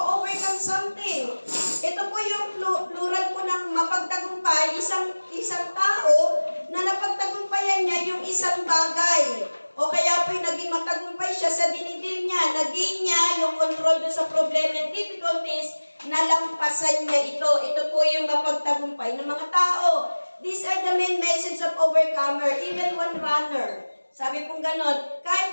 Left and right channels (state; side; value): inverted; both; correlation -1.00